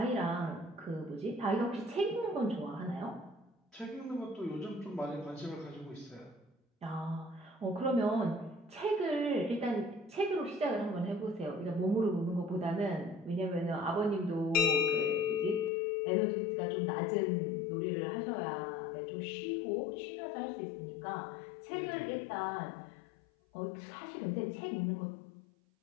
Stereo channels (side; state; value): right; drops out; at 15.7 s